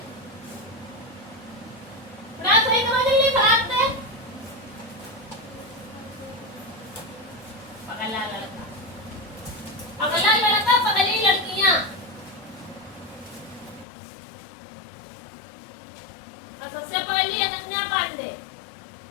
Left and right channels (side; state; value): right; drops out; at 13.9 s